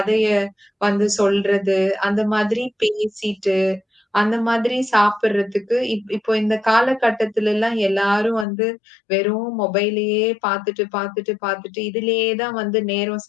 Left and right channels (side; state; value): right; drops out; at 8.5 s